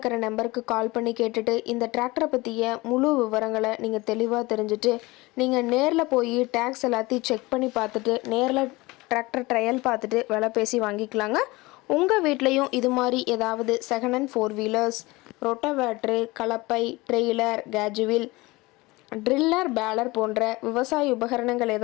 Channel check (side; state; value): right; quieter; 22.0 dB